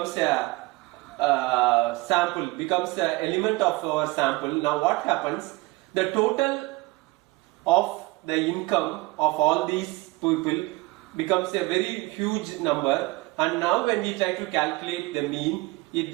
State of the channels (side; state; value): left; quieter; 22.4 dB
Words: a sample, becomes an element of our sample. Now what happens? The total of the income of all these people becomes a very huge number, and now when we try to calculate the mean, it